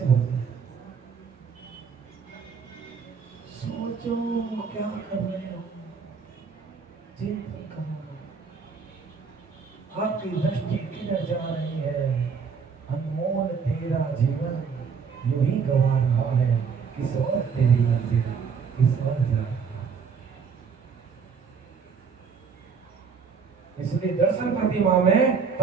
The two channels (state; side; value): quieter; left; 5.9 dB